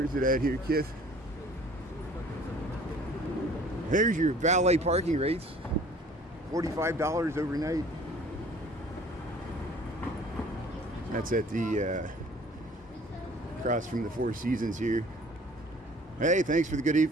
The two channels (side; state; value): both; normal; correlation 0.51